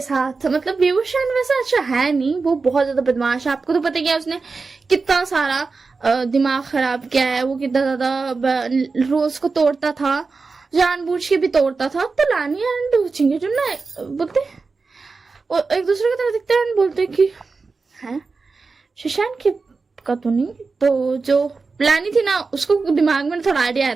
साथ, मतलब विभूषण वैसे अच्छा है नहीं, वो बहुत ज्यादा बदमाश है। आपको तो पता क्या उसने कितना सारा दिमाग खराब किया है, वो कितना ज्यादा रोज को तोड़ता था, जानबूझ के भी तोड़ता था। तो लानी एंड चिंगे जो ना बोलते एक दूसरे की तरह दिखते हैं, बोलते कि है शिशान की का तो नहीं। तो जो लानी थी ना उसको दिमाग में थोड़ा आइडिया आया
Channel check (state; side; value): quieter; left; 4.3 dB